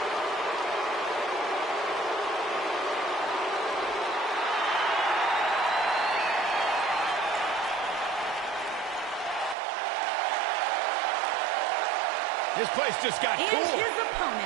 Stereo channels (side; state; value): left; drops out; at 9.6 s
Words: This place just got And cool. his